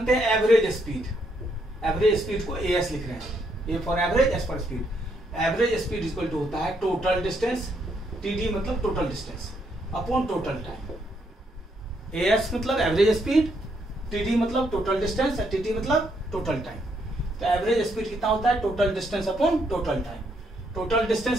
हैं एवरेज स्पीड। एवरेज स्पीड को AS लिख रहे हैं, A for average, S for speed. Average speed equal to होता है टोटल डिस्टेंस, TD मतलब total distance, upon total time. AS मतलब एवरेज स्पीड, TD मतलब टोटल डिस्टेंस, TT मतलब टोटल टाइम। तो एवरेज स्पीड कितना होता है total distance upon total time. Total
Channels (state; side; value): normal; both; correlation 0.74